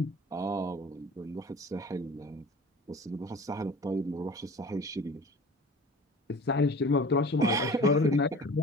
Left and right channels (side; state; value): both; normal; correlation 0.42